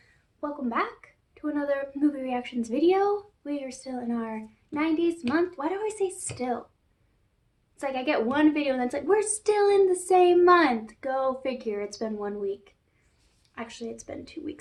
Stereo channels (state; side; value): identical; both; correlation 1.00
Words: Welcome back to another movie reactions video. We are still in our 90s month. Why do I say still? It's like I get one video and then it's like, we're still in the same month. Go figure, it's been 1 week. Actually, it's been 2